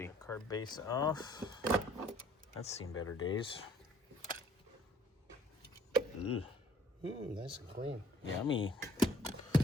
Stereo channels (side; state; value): both; normal; correlation 0.58